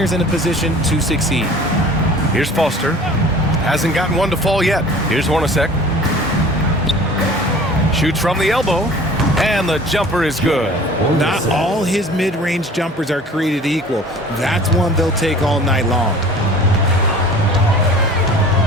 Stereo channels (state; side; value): normal; both; correlation 0.45